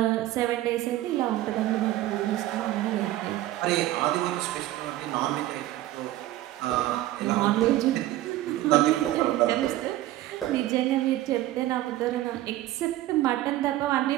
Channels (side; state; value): left; quieter; 15.2 dB